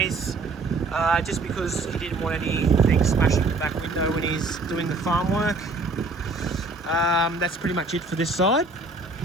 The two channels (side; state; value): left; quieter; 3.5 dB